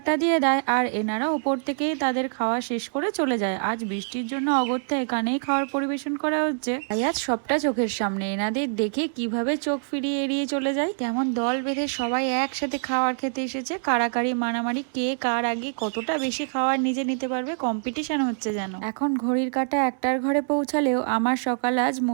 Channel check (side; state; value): left; silent; digital silence